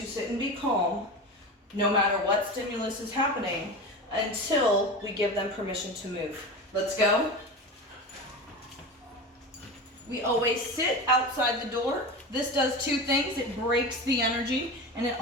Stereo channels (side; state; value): both; normal; correlation 0.27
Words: sit and be calm no matter what stimulus is happening until we give them permission to move. Let's go. We always sit outside the door. This does two things. It breaks the energy, and it